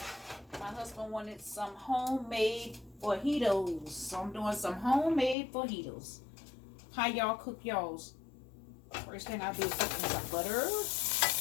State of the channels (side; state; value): right; drops out; at 5.4 s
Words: My husband wanted some homemade fajitas. So I'm doing some homemade fajitas. How y'all cook y'all's? First thing I do is put in some butter.